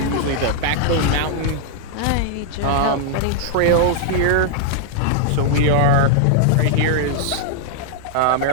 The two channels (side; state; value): both; different; correlation -0.01